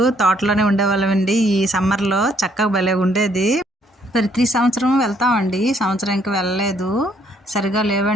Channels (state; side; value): normal; both; correlation 0.67